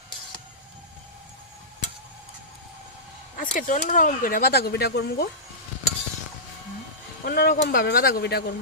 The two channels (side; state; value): both; normal; correlation -0.16